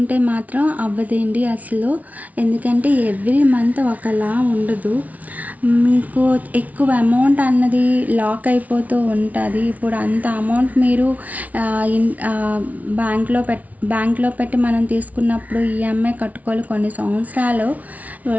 మాత్రం అవ్వదండి అసలు. ఎందుకంటే ఎవ్రీ మంత్ ఒకలా ఉండదు, మీకు ఎక్కువ అమౌంట్ అన్నది లాక్ అయిపోతూ ఉంటుంది. ఇప్పుడు అంత అమౌంట్ మీరు బ్యాంక్లో పెట్టి మనం తీసుకున్నప్పుడు ఈఎంఐ కట్టుకోవాలి కొన్ని సంవత్సరాలు.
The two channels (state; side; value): late; left; 0.072 ms